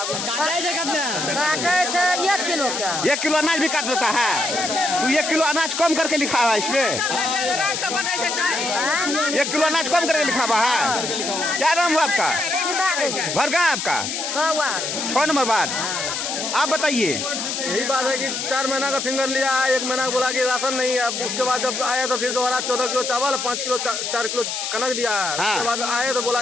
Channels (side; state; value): left; noise; hiss, 3 dB below the sound